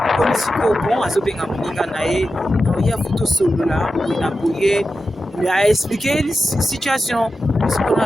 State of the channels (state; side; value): normal; both; correlation 0.91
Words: comme siko bon azobenga moninga na ye ya photo solo là na boye il a expliqué la situation parce qu'on a